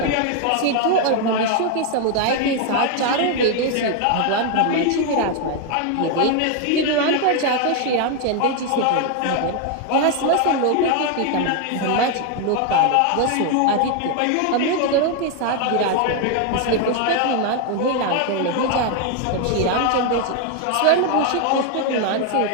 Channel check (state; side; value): different; both; correlation 0.01